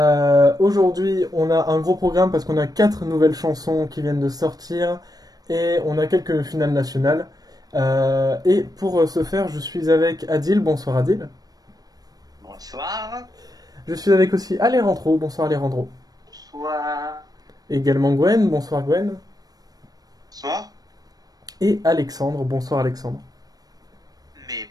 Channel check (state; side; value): late; left; 0.19 ms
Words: Aujourd'hui on a un gros programme parce qu'on a 4 nouvelles chansons qui viennent de sortir et on a quelques finales nationales. Et pour ce faire je suis avec Adil, bonsoir Adil. Bonsoir. Je suis avec aussi Alejandro, bonsoir Alejandro. Bonsoir. Également Gwen, bonsoir Gwen. Bonsoir. Et Alexandre, bonsoir Alexandre. Mais